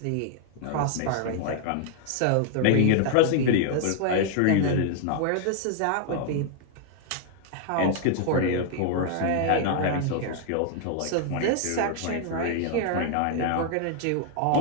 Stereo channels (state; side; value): different; both; correlation 0.00